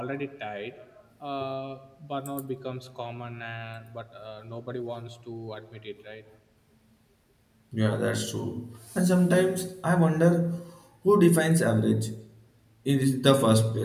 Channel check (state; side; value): identical; both; correlation 1.00